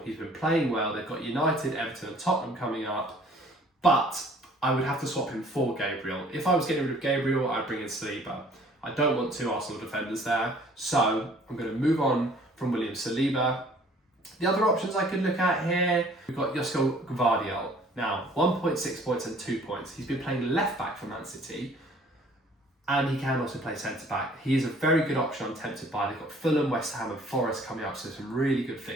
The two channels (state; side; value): normal; both; correlation 0.55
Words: He's been playing well. They've got United, Everton and Tottenham coming up. But I would have to swap him for Gabriel. If I was getting rid of Gabriel, I'd bring in Saliba. I don't want 2 Arsenal defenders there, so I'm going to move on from William Saliba. The other options I could look at here, we've got Josko Gvardiol. Now, 1.6 points and 2 points. He's been playing left-back for Man City, and he can also play centre-back. He is a very good option I'm tempted by. They've got Fulham, West Ham and Forest coming up, so some really good